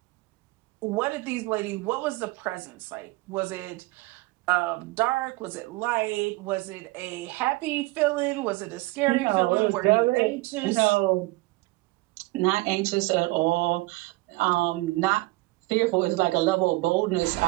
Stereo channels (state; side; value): quieter; left; 21.5 dB